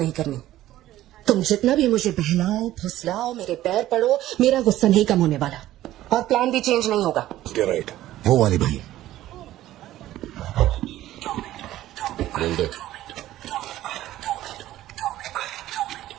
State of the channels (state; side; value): quieter; left; 14.4 dB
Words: करनी। तुम जितना भी मुझे बहलाओ, फुसलाओ, मेरे पैर पड़ो, मेरा गुस्सा नहीं कम होने वाला और प्लान भी चेंज नहीं होगा। राइट, वो वाली भाई बोल दे।